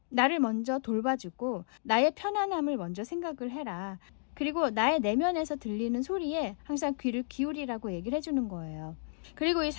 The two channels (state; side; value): silent; right; digital silence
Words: 나를 먼저 돌봐주고 나의 편안함을 먼저 생각을 해라. 그리고 나의 내면에서 들리는 소리에 항상 귀를 기울이라고 얘기를 해주는 거예요. 그리고 이